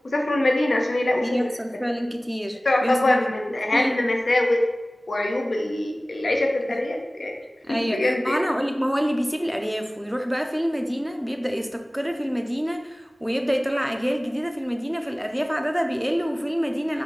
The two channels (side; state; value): both; normal; correlation 0.98